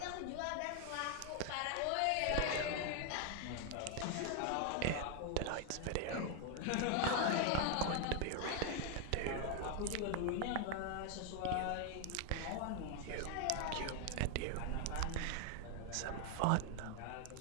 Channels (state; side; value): different; both; correlation 0.01